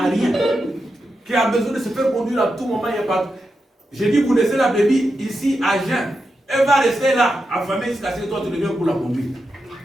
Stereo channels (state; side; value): normal; both; correlation 0.88